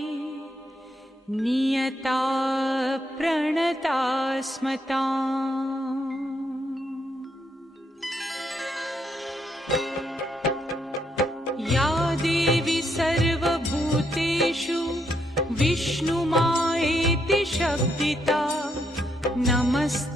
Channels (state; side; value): normal; both; correlation 0.77